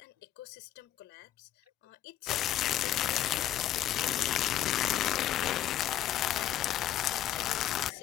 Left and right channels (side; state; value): right; quieter; 12.2 dB